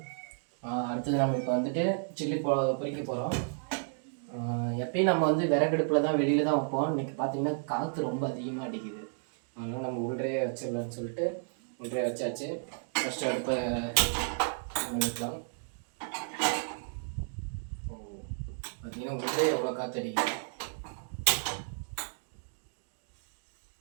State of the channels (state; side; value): silent; left; digital silence